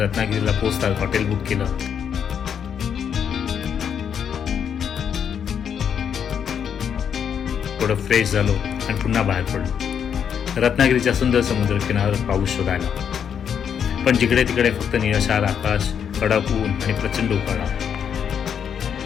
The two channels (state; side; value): quieter; right; 7.9 dB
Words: पोहोचताच हॉटेल बुक केलं. थोडं फ्रेश झालो आणि पुन्हा बाहेर पडलो. रत्नागिरीच्या सुंदर समुद्र किनाऱ्यावर पाऊस शोधायला. पण जिकडे तिकडे फक्त निळाशार आकाश, कडक ऊन आणि प्रचंड उकाडा.